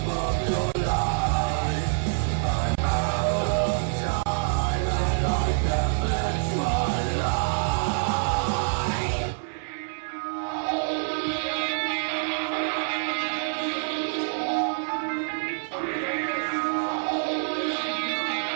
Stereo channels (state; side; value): silent; left; 61 dB below the other